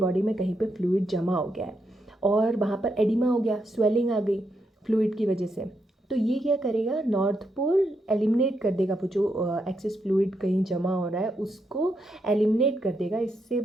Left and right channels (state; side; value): normal; both; correlation 0.81